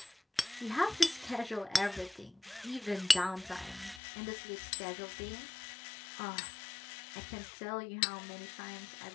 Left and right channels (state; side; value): drops out; right; at 4.0 s